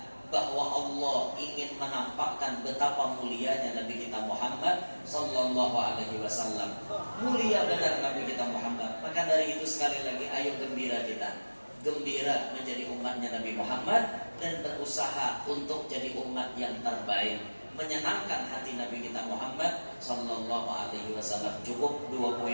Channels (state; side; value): inverted; both; correlation -1.00